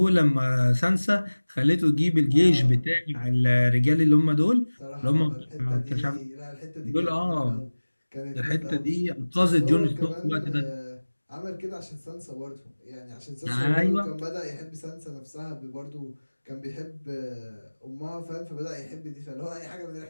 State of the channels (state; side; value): inverted; both; correlation -1.00